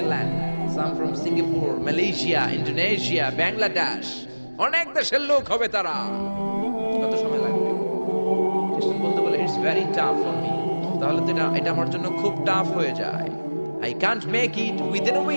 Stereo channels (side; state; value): both; inverted; correlation -1.00